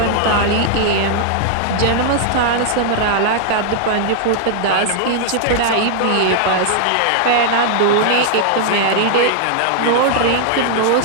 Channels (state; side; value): different; both; correlation -0.01